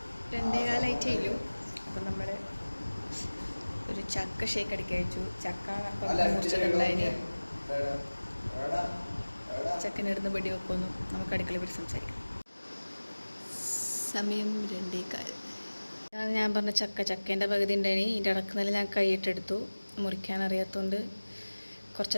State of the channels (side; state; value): both; inverted; correlation -1.00